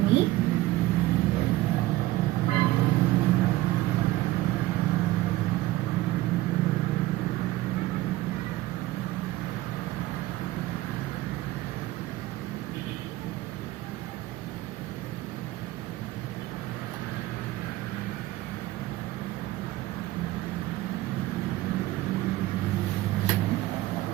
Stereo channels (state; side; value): quieter; left; 17.0 dB